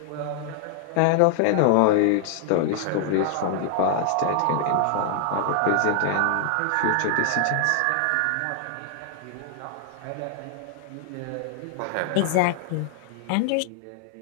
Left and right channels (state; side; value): different; both; correlation 0.00